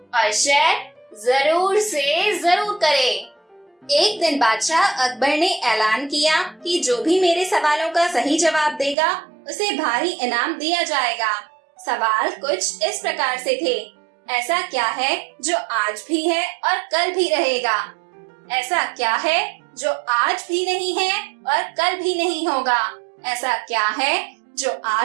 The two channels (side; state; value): left; drops out; at 9.0 s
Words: और शेयर जरूर से जरूर करें। एक दिन बादशाह अकबर ने ऐलान किया कि जो भी मेरे सवालों का सही जवाब देगा उसे भारी इनाम दिया जाएगा। सवाल कुछ इस प्रकार से थे। ऐसा क्या है जो आज भी है और कल भी रहेगा? ऐसा क्या है जो आज भी नहीं है और कल भी नहीं होगा? ऐसा क्या है जो